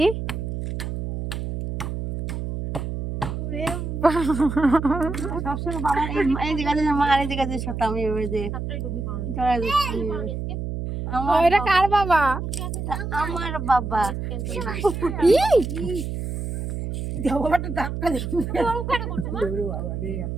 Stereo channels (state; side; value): noise; right; hum, 4 dB below the sound